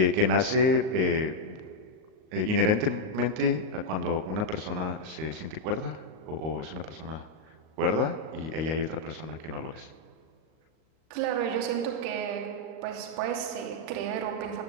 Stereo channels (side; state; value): left; late; 38 ms